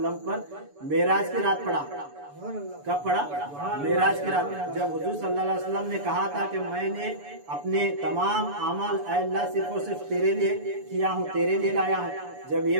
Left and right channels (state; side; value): late; left; 7.0 ms